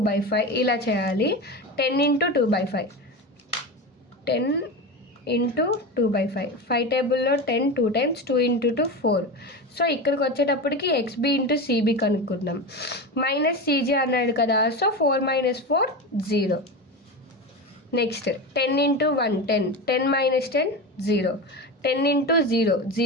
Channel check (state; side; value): normal; both; correlation 0.23